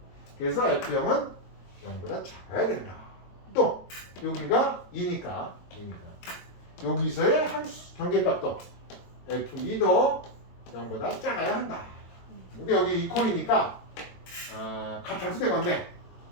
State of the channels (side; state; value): right; late; 22 ms